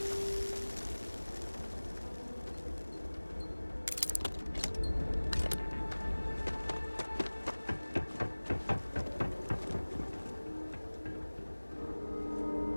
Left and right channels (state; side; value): inverted; both; correlation -1.00